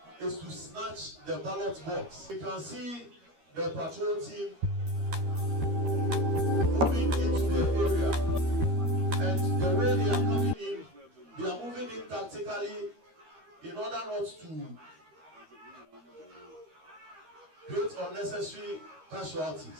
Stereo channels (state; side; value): late; left; 13 ms